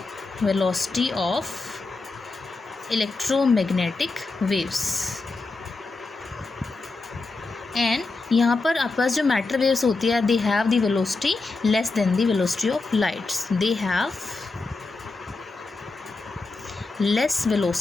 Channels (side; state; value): right; quieter; 3.6 dB